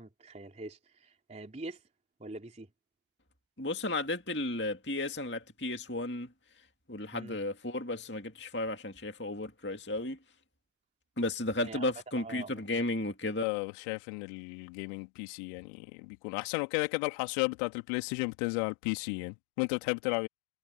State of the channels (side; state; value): right; drops out; at 13.5 s